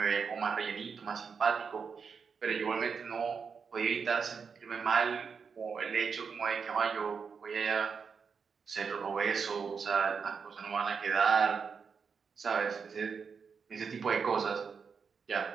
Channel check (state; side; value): quieter; left; 5.9 dB